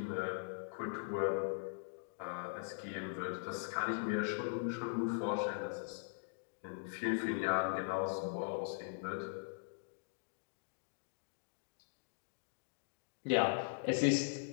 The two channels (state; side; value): silent; right; digital silence